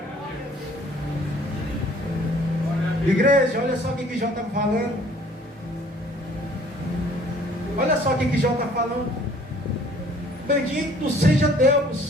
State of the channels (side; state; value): both; normal; correlation 0.56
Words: Igreja, olha só o que Jó está falando. Olha só o que Jó está falando. Bendito seja